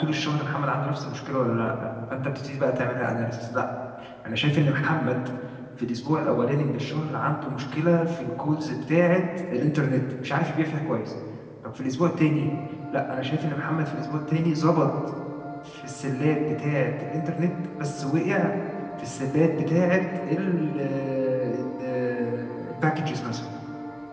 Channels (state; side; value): identical; both; correlation 1.00